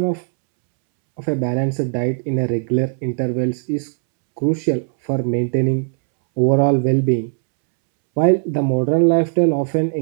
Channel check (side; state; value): left; silent; 67 dB below the other